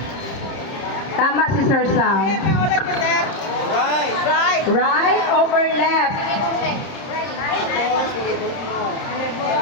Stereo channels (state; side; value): late; right; 30 ms